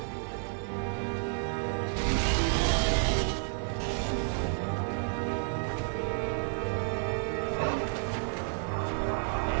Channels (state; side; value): silent; left; 57 dB below the other